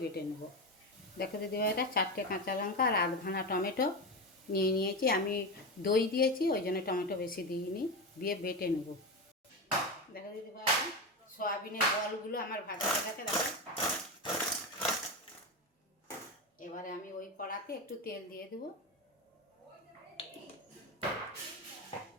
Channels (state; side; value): normal; both; correlation 0.17